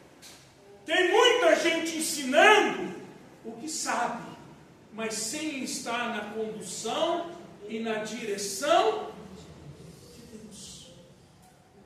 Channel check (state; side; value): identical; both; correlation 1.00